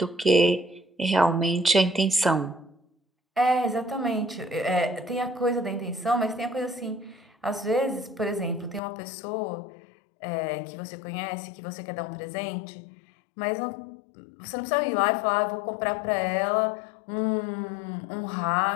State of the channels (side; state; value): right; drops out; at 8.8 s